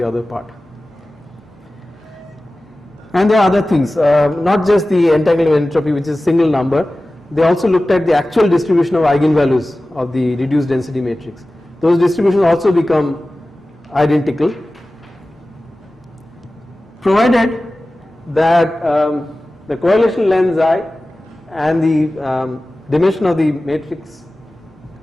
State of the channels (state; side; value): normal; both; correlation 0.96